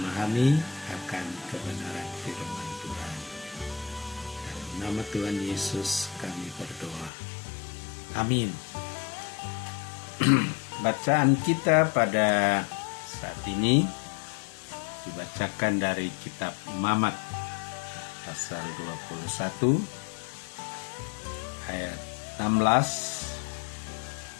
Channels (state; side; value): drops out; right; at 7.1 s